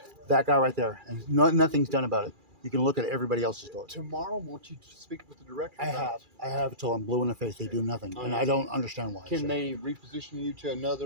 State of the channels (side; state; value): left; late; 2.4 ms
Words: that guy right there, and nothing's done about it. You can look at everybody else's door. Tomorrow, won't you speak with the director? I have until I'm blue in the face. They do nothing, and I don't understand why. Can they reposition you to